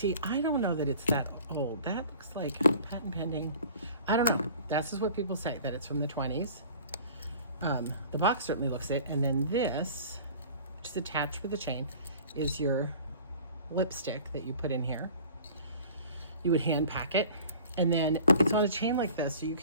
I don't know that it's that old. That looks like patent pending. I don't know. This is what people say, that it's from the 20s. The box certainly looks it. And then this, which is attached with a chain, is your lipstick that you put in here. You would hand pack it. And then it's on a chain like this, so you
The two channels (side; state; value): both; inverted; correlation -0.46